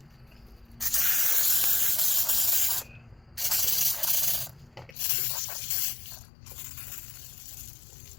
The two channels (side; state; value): right; drops out; at 5.0 s